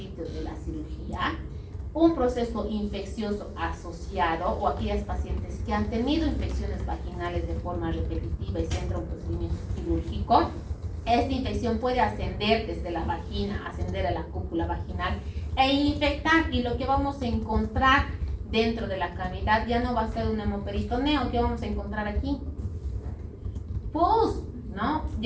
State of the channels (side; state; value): both; identical; correlation 1.00